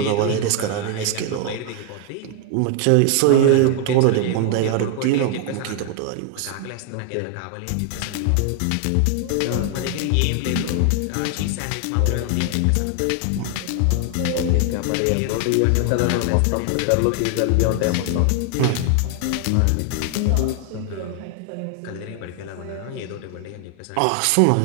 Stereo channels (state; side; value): different; both; correlation 0.00